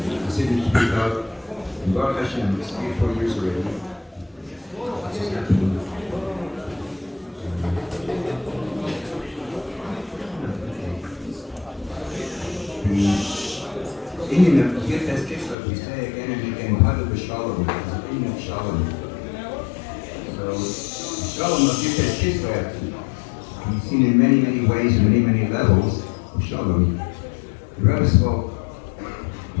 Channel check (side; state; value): right; drops out; at 15.6 s